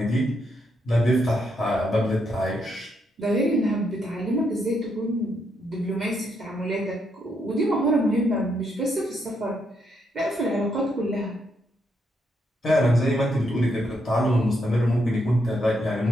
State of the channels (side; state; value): both; normal; correlation 0.78